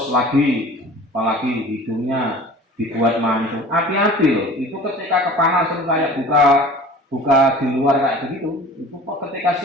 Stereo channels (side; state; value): both; normal; correlation 0.42